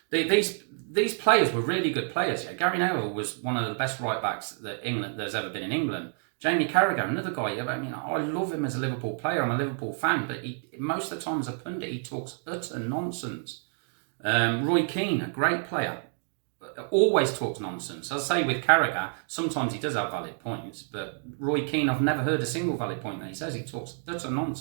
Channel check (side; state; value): left; silent; 59 dB below the other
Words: these players were really good players. Yeah, Gary Neville was one of the best right backs that there's ever been in England. Jaime Carragher, another guy. I mean, I love him as a Liverpool player. I'm a Liverpool fan, but most of the time as a pundit, he talks utter nonsense. Roy Keane, a great player, always talks nonsense. As I say with Carragher, sometimes he does have valid points, but Roy Keane, I've never heard a single valid point that he says. He talks utter